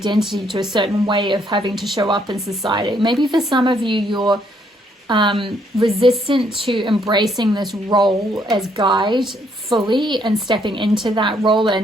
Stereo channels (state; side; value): normal; both; correlation 0.70